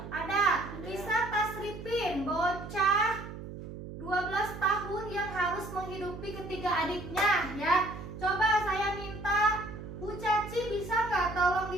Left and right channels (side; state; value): right; noise; hum, 11 dB below the sound